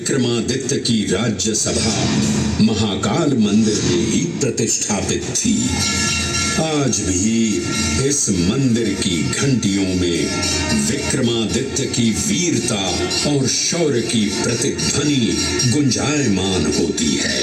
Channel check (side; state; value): both; identical; correlation 1.00